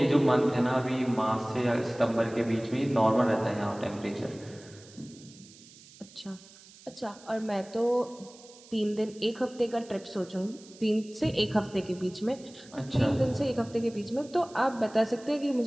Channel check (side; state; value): right; noise; hiss, 22 dB below the sound